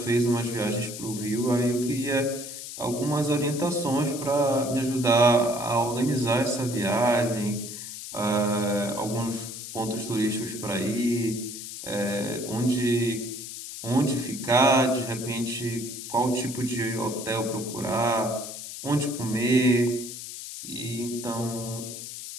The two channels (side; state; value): left; noise; hiss, 9 dB below the sound